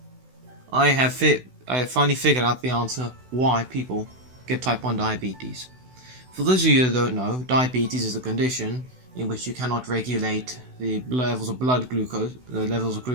I have finally figured out the answer why people get type 1 diabetes. For those of you that don't know, diabetes is a condition in which you cannot regulate the levels of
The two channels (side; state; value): left; late; 16 ms